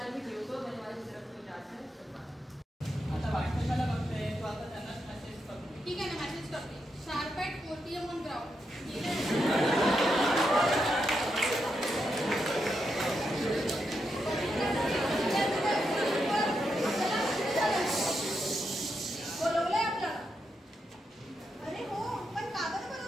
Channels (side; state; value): both; normal; correlation 0.84